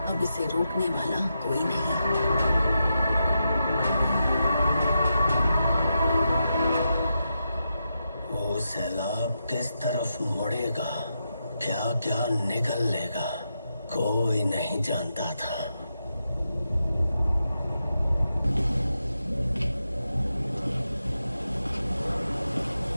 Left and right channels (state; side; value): inverted; both; correlation -0.86